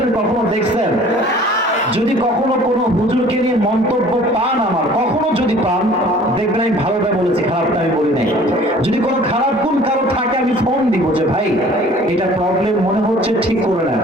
কখনো দেখছেন? যদি কখনো কোনো হুজুরকে নিয়ে মন্তব্য পান, আমার কখনো যদি পান, দেখবেন আমি ভালোটা বলেছি, খারাপটা আমি বলি নাই। যদি কোনো খারাপ গুণ কারো থাকে, আমি ফোন দিব যে ভাই এটা প্রবলেম মনে হচ্ছে, ঠিক করে নেন।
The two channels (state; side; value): normal; both; correlation 0.50